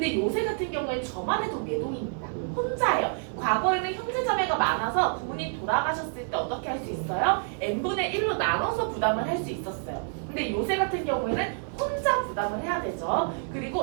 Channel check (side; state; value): left; silent; 59 dB below the other